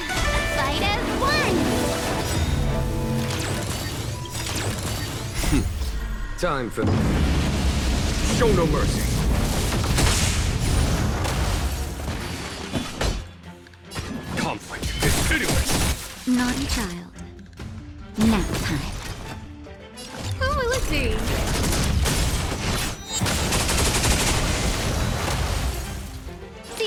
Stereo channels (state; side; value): identical; both; correlation 1.00